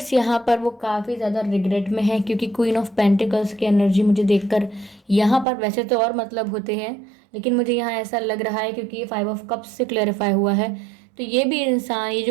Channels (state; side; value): drops out; left; at 5.5 s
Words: यहाँ पर वो काफ़ी ज़्यादा रिग्रेट में है, क्योंकि क्वीन ऑफ पेंटिकल्स की एनर्जी मुझे देखकर यहाँ पर, वैसे तो और मतलब होते हैं, लेकिन मुझे यहाँ ऐसा लग रहा है क्योंकि ये 5 ऑफ कप्स से क्लैरिफाई हुआ है, तो ये भी इंसान, ये